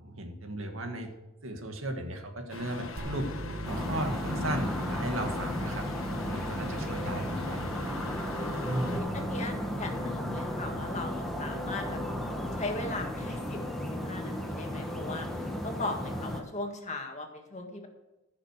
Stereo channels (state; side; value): normal; both; correlation 0.56